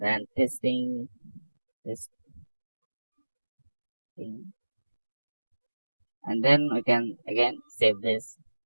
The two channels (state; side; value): inverted; both; correlation -1.00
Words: testing, and then we can again save this.